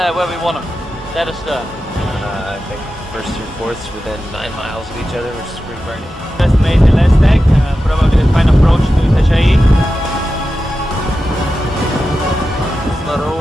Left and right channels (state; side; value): normal; both; correlation 0.92